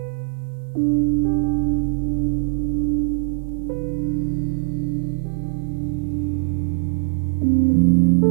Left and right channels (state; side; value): silent; left; 65 dB below the other